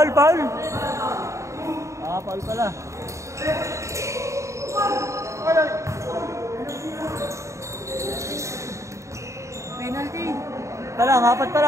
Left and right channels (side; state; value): left; late; 0.14 ms